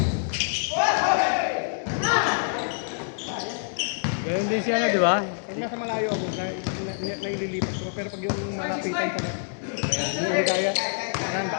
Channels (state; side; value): silent; right; digital silence